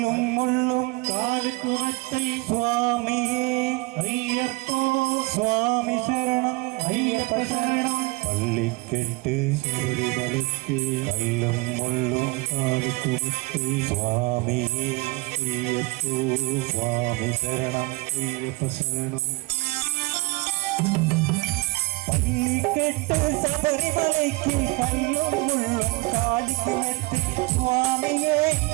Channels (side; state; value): left; quieter; 24.8 dB